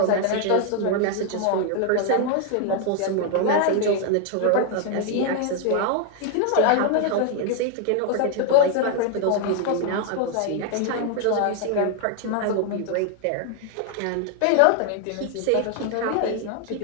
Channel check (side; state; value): both; different; correlation 0.00